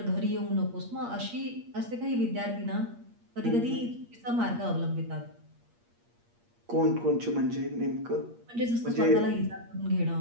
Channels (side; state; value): left; late; 8.5 ms